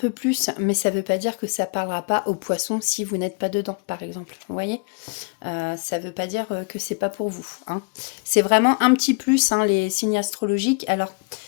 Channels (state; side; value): quieter; right; 35.4 dB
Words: plus, mais ça veut pas dire que ça parlera pas aux poissons si vous n'êtes pas dedans, par exemple. Vous voyez, ça veut pas dire que c'est pas pour vous, hein. C'est vraiment un petit plus, hein, les signes astrologiques. Alors,